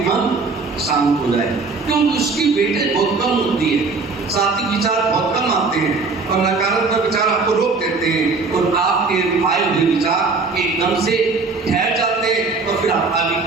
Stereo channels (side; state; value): left; quieter; 4.1 dB